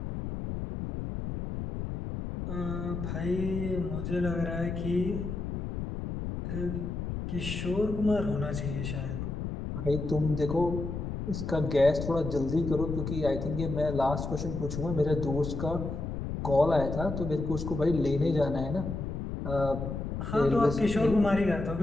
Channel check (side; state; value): left; noise; rumble, 5 dB below the sound